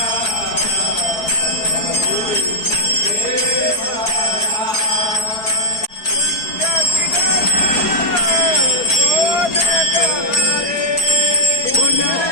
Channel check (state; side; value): late; right; 4.7 ms